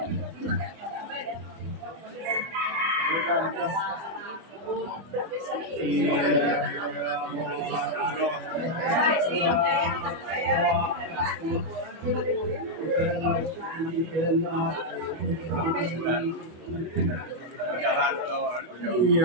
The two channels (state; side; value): late; left; 25 ms